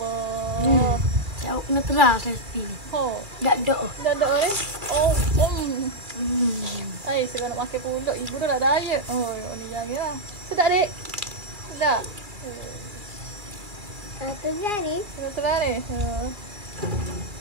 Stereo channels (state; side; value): late; left; 2.4 ms